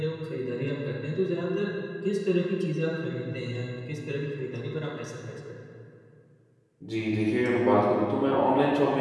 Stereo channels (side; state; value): both; identical; correlation 1.00